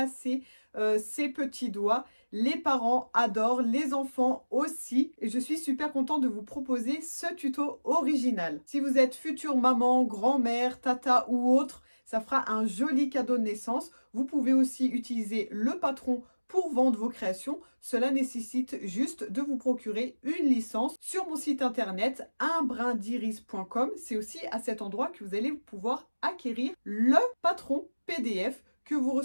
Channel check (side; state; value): both; inverted; correlation -1.00